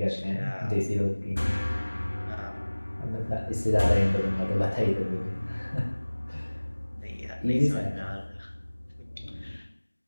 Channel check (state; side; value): inverted; both; correlation -1.00